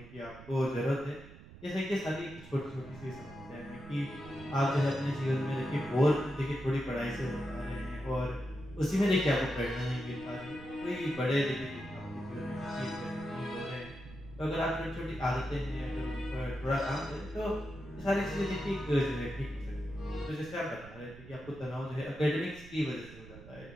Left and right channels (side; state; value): right; noise; rumble, 17 dB below the sound